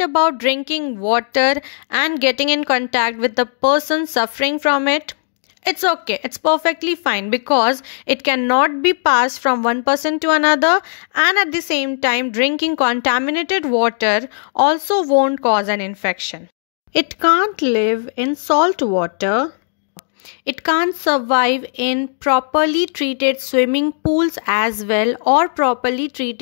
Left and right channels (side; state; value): right; silent; digital silence